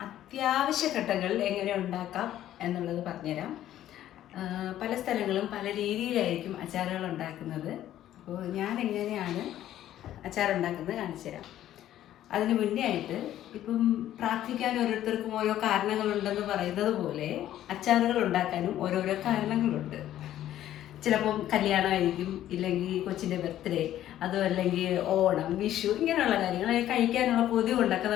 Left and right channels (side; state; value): right; quieter; 12.4 dB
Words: അത്യാവശ്യ ഘട്ടങ്ങളിൽ എങ്ങനെ ഉണ്ടാക്കാം എന്നുള്ളത് പറഞ്ഞുതരാം. പല സ്ഥലങ്ങളും പല രീതിയിലായിരിക്കും അച്ചാറുകൾ ഉണ്ടാക്കുന്നത്. അപ്പോൾ ഞാൻ എങ്ങനെയാണ് അച്ചാർ ഉണ്ടാക്കുന്നത് കാണിച്ചു തരാം. അതിന് മുന്നേ ആയിട്ട് ഇപ്പം പ്രാർത്ഥിക്കാൻ ഓരോരുത്തർക്കും ഓരോ കാരണങ്ങളുണ്ടെന്ന് പറയുന്നത് പോലെ അച്ചാറുകൾ ഉണ്ടാക്കാനും ഓരോരോ കാരണങ്ങളുണ്ട്. ചിലപ്പം കല്യാണമായിരിക്കും, ഇല്ലെങ്കിൽ കൊച്ചിൻ്റെ ബർത്ത്ഡേ, അതും അല്ലെങ്കിൽ ഓണം, വിഷു, ഇങ്ങനെയുള്ള കാര്യങ്ങൾ കഴിക്കാനുള്ള കൊതി കൊണ്ടൊക്കെ